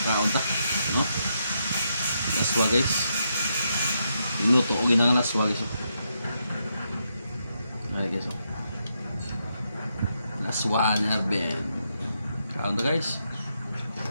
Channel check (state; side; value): inverted; both; correlation -0.81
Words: kaunta no laswa guys, minuto o ginang laswa guys. Ay guys, laswa na ben kaunta guys,